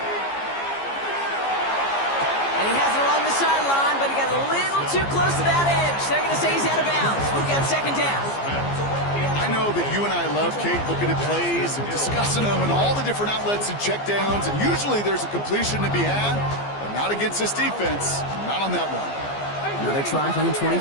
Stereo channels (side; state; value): right; late; 15 ms